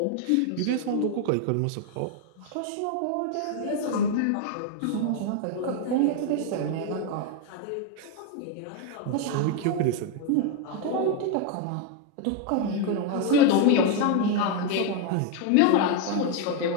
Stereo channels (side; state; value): both; different; correlation 0.01